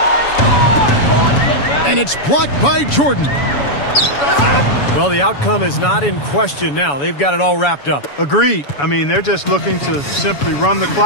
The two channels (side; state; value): right; late; 7.0 ms